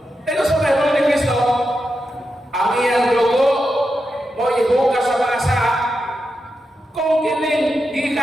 Pero sa Bible ni Kristo, ang iyang dugo mo ihugas sa mga saa. Kung kining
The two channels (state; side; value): normal; both; correlation 0.88